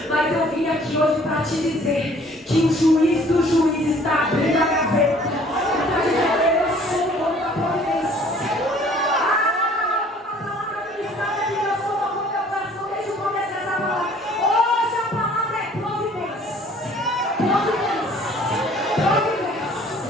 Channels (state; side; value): normal; both; correlation 0.55